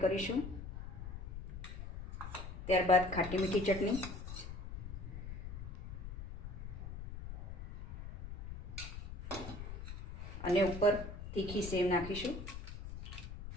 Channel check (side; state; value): left; noise; rumble, 9 dB below the sound